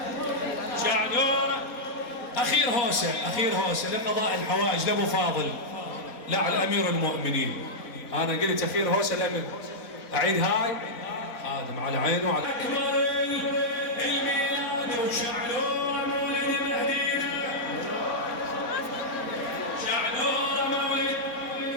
شعنوره أخير هوسة لقضاء الحوائج لأبو فاضل لا على أمير المؤمنين أنا قلت أخير هوسة الأمير أعيد هاي آدم على عينه وعلى أكبر الميلاد وشعنوره مولد مهدينا شعنوره مولد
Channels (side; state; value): right; late; 4.0 ms